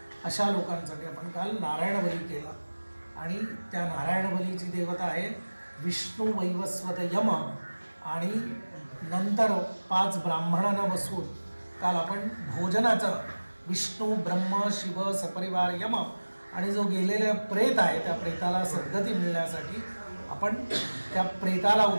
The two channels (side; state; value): both; inverted; correlation -1.00